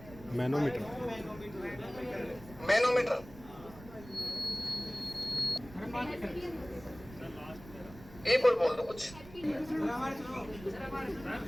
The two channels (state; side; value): noise; right; rumble, 18 dB below the sound